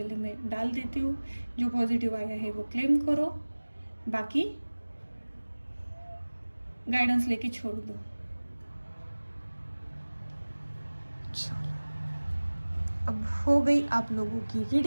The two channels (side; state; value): both; inverted; correlation -1.00